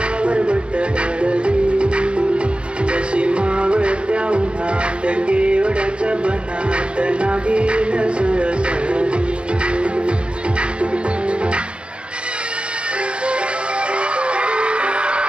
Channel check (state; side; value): late; left; 0.055 ms